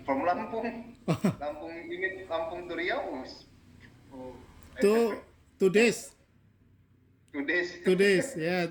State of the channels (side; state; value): both; identical; correlation 1.00